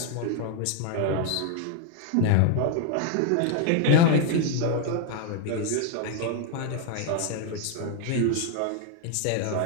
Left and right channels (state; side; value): different; both; correlation 0.01